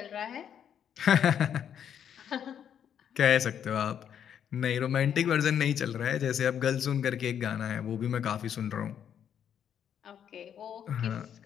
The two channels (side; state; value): right; quieter; 8.9 dB